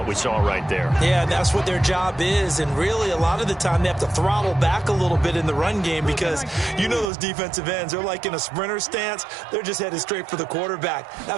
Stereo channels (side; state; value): left; drops out; at 7.1 s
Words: we saw right there. Yeah, and that's what their job is. And really, a lot of the time, they have to throttle back a little bit in the run game because you know those defensive ends, they're like in a sprinter stance. They're just headed straight for the quarterback. That